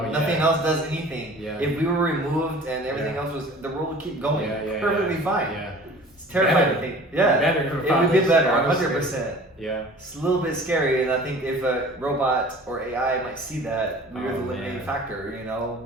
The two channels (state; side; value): normal; both; correlation 0.45